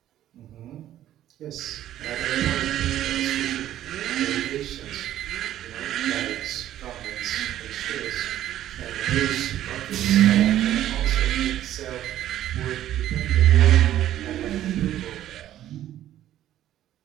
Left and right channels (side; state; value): left; quieter; 12.5 dB